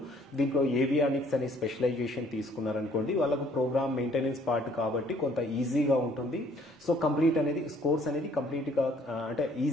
దీంట్లో ఏవియానిక్స్ అనే స్పెషలైజేషన్ తీసుకున్నారనుకోండి, వాళ్ళకు ప్రోగ్రామ్ మెయింటెనెన్స్ పార్ట్ కాబట్టి కొంత ఈజీగా ఉంటుంది. సో కంప్లీట్ అనేది కోర్స్ అనేది కంప్లీట్గా అంటే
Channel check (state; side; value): normal; both; correlation 0.60